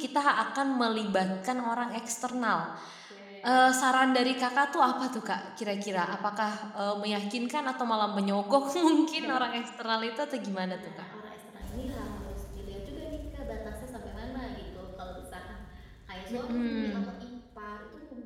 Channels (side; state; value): both; identical; correlation 1.00